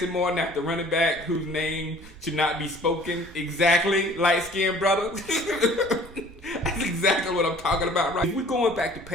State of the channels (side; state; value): right; noise; rumble, 19 dB below the sound